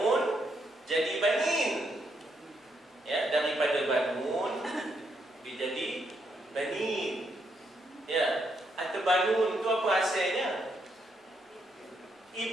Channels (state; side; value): normal; both; correlation 0.77